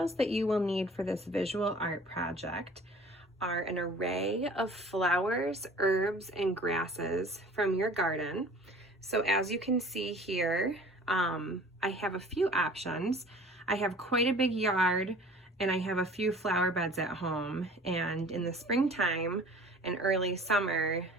that you will need for this visual art project are an array of flowers, herbs, and grasses from your garden. So as you can see here, I have a few options. I have quite a big yard and I have a few flower beds at home, and in the springtime and early summer,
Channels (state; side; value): normal; both; correlation 0.47